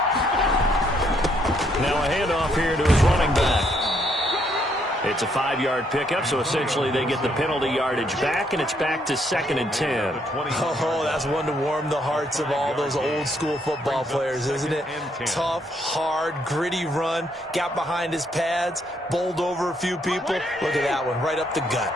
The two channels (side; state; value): both; normal; correlation 0.72